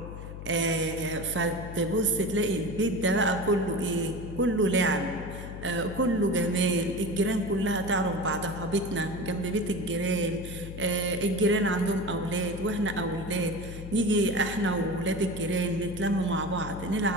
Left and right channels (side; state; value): left; noise; hum, 10 dB below the sound